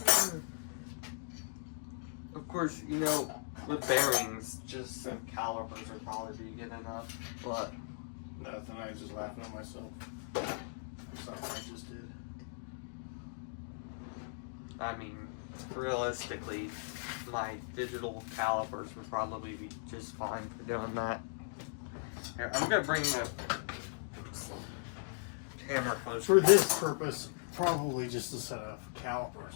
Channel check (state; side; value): silent; right; digital silence